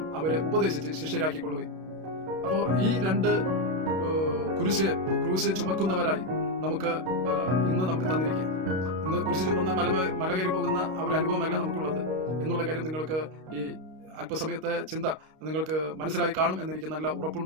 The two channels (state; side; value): late; left; 32 ms